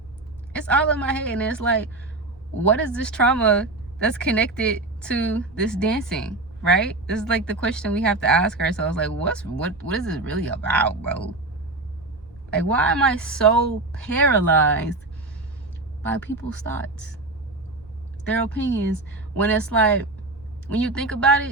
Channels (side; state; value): left; quieter; 3.0 dB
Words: It's all in my head. And it's like, what is this trauma that's connected to this dancing, right? This is like the question we have to ask ourselves. Like, what is this really about, bro? Like, why am I so paralyzed by people's thoughts, their opinions, when it's like, when you think about